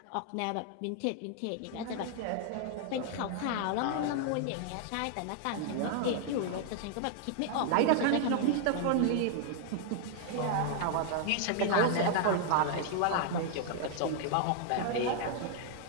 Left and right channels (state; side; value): different; both; correlation 0.00